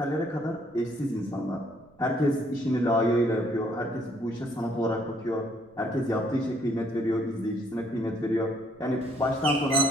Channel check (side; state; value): right; noise; rumble, 29 dB below the sound